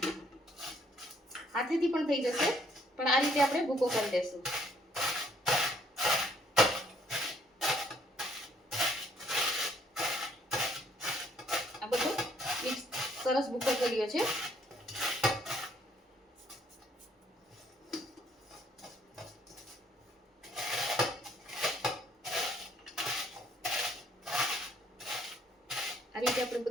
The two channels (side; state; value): both; normal; correlation 0.65